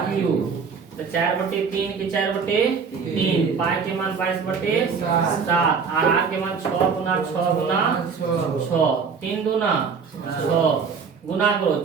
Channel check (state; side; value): quieter; left; 5.7 dB